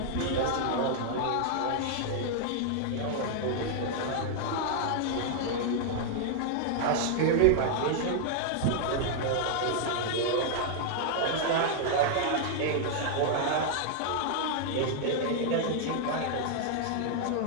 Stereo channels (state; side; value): different; both; correlation 0.00